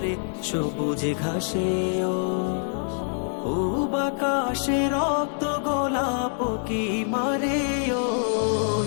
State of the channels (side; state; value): right; silent; 62 dB below the other